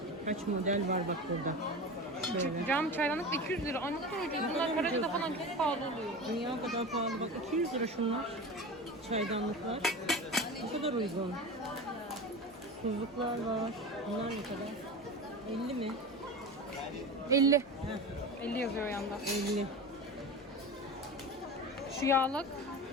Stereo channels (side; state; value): both; normal; correlation 0.28